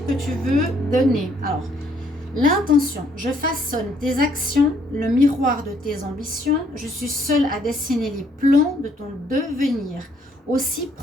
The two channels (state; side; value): normal; both; correlation 0.67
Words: que tu veux donner? Alors, l'intention, je façonne tes actions, le miroir de tes ambitions. Je suis seule à dessiner les plans de ton devenir. Aussi,